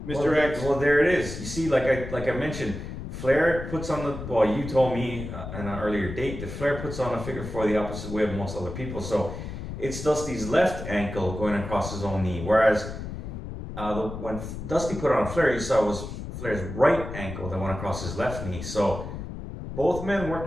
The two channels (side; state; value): left; noise; rumble, 8 dB below the sound